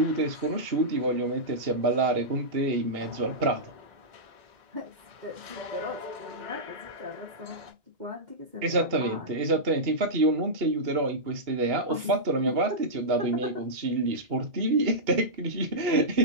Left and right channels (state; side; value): late; left; 2.8 ms